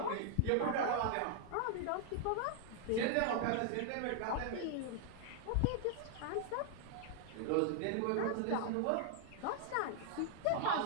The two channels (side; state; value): both; different; correlation 0.00